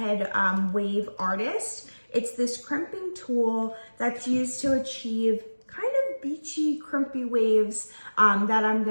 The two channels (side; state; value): both; inverted; correlation -1.00